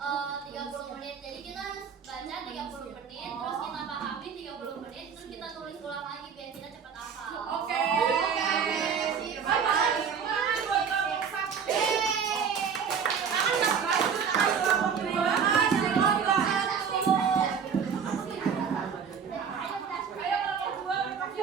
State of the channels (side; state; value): left; quieter; 6.8 dB